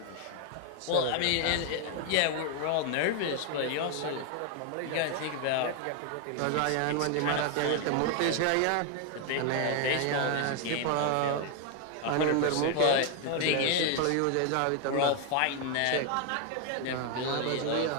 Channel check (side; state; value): both; different; correlation 0.01